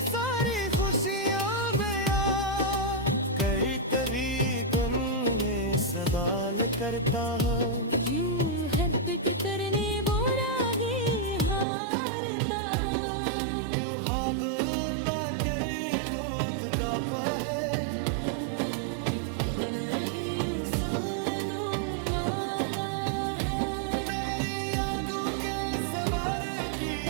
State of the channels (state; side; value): drops out; left; at 11.7 s